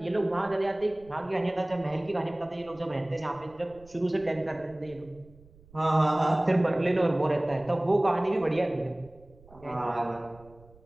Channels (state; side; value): noise; right; rumble, 25 dB below the sound